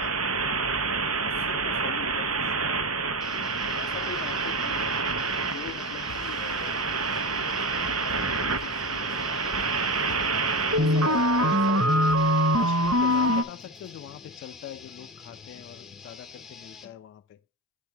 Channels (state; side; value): normal; both; correlation 0.19